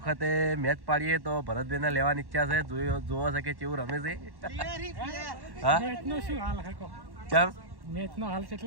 મેચ પાડીએ તો ભરતભાઈને લેવાની ઈચ્છા છે. જોવો છે કે કેવું રમે છે. હા કેમ મેચનો હાલ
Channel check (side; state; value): left; late; 1.1 ms